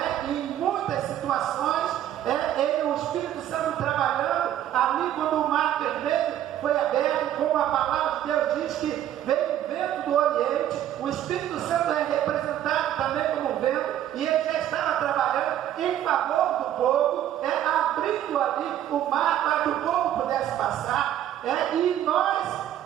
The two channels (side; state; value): left; quieter; 11.6 dB